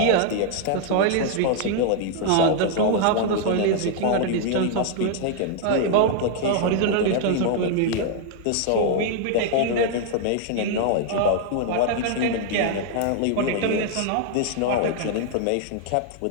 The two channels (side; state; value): both; different; correlation 0.00